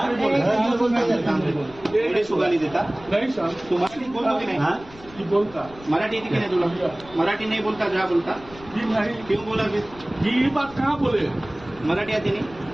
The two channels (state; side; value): noise; left; rumble, 20 dB below the sound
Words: सुगाली देता नहीं सर, तू मराठी बोलतो की नाही जी बोलता मराठी येते की नाही तुला मराठी नहीं बोलता जा बोलता जी नहीं क्यों बोला फिर जी ये बात कहाँ बोले मराठी आती नहीं